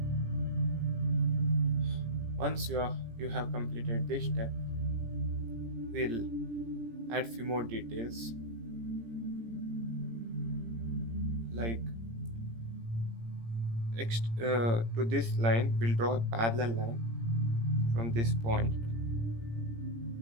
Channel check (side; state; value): left; late; 17 ms